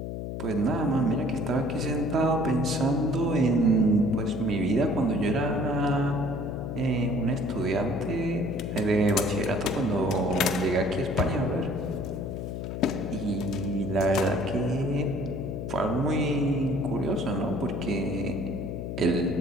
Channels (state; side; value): noise; left; hum, 5 dB below the sound